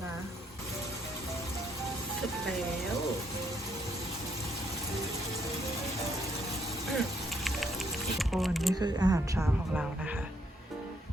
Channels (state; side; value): normal; both; correlation 0.72